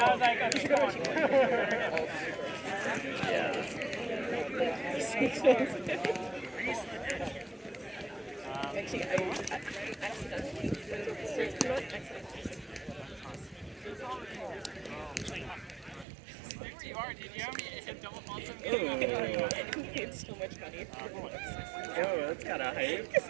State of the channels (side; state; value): left; drops out; at 16.1 s